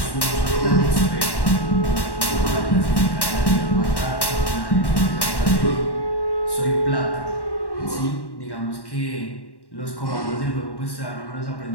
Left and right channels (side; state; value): right; late; 1.1 ms